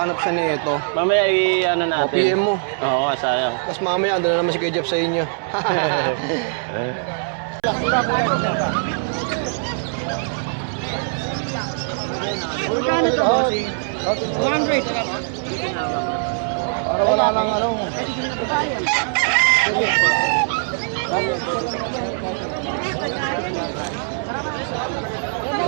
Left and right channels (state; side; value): silent; left; 61 dB below the other